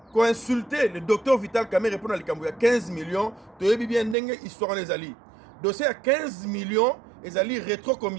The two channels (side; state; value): left; drops out; at 4.2 s